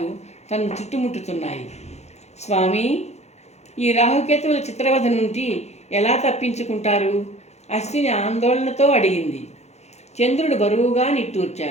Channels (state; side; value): late; right; 0.32 ms